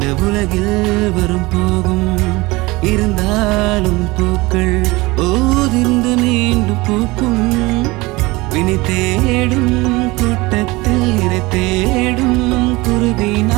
உலகில் வரும் போகும் இருந்தாலும் பூக்கள் ஓதிர்ந்து மீண்டும் பூக்கும். வினை தேடும் கூட்டத்தில் இறை தேடும் குருவி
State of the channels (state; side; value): quieter; left; 22.3 dB